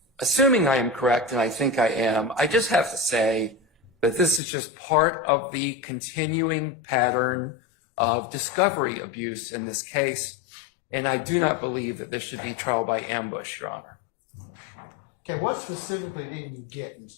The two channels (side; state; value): right; drops out; at 4.4 s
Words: assuming I am correct, and I think I am, I just have to say that this is just part of the continuing pattern of discovery abuse in this case, and I do not believe that this should be trial by ambush, Your Honor. Okay, what specifically didn't you get,